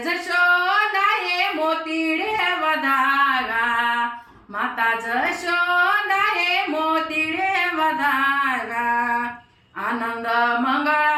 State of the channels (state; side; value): identical; both; correlation 1.00